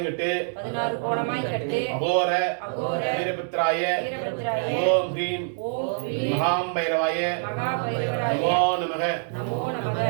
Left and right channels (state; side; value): silent; left; digital silence